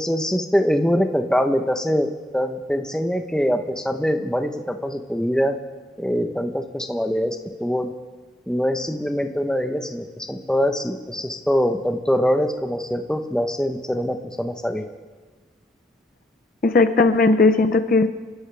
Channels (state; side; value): normal; both; correlation 0.77